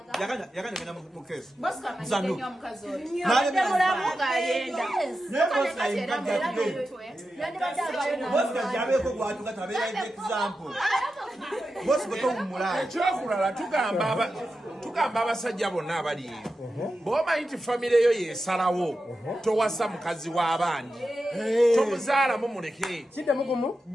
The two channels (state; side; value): normal; both; correlation 0.91